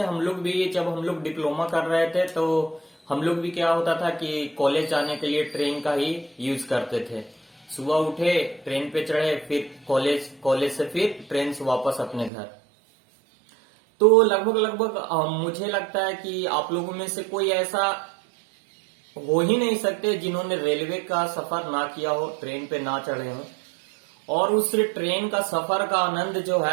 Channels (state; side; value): drops out; left; at 12.3 s